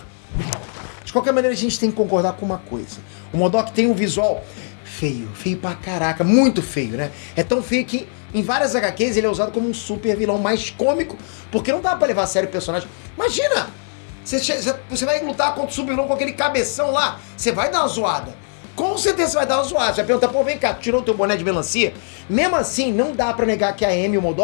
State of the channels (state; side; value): silent; right; 56 dB below the other